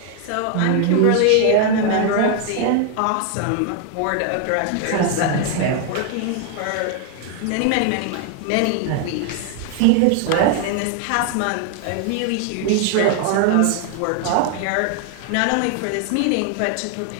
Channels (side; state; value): both; different; correlation 0.00